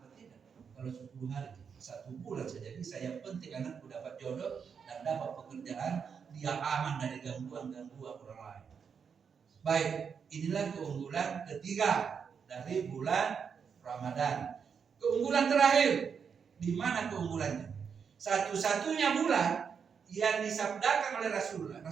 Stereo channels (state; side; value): quieter; left; 6.6 dB